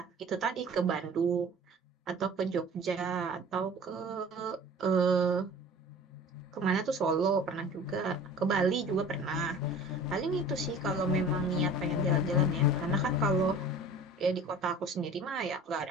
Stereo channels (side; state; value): both; normal; correlation 0.43